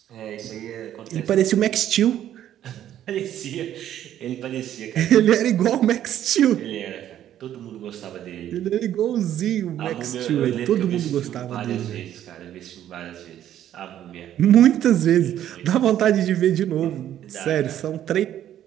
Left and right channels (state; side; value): quieter; left; 11.3 dB